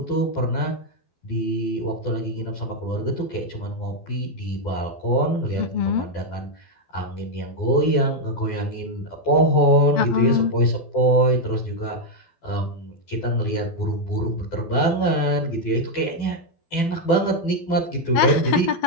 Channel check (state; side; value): late; right; 12 ms